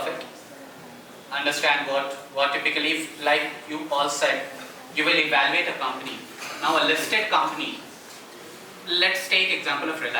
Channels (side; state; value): both; identical; correlation 1.00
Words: it. Understand what typically, like you all said, you will evaluate a company. Now a listed company, let's take example of